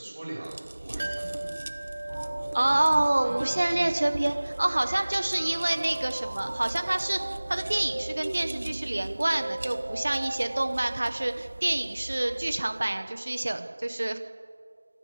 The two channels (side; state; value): both; inverted; correlation -1.00